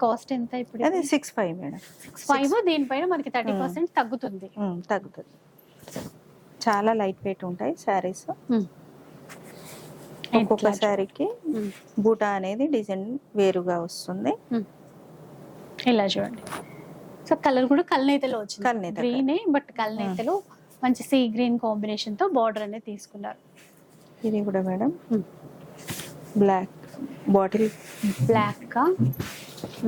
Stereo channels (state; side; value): identical; both; correlation 1.00